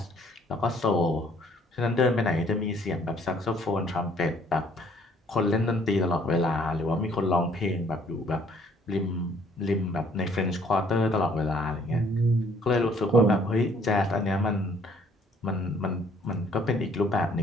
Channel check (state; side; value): normal; both; correlation 0.62